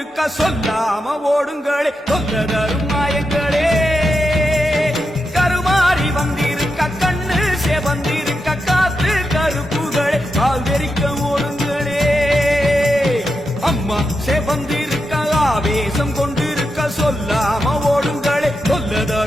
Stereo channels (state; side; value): normal; both; correlation 0.87